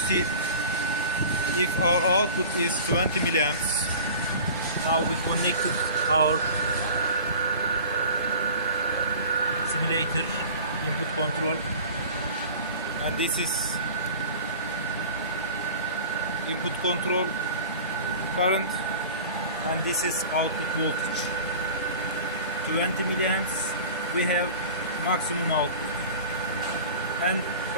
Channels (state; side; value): inverted; both; correlation -0.40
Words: if our output is 20 milliamps, now we connected our simulator input control, and this is input control current, and this is output voltage. 20 milliamps we have maximum output. And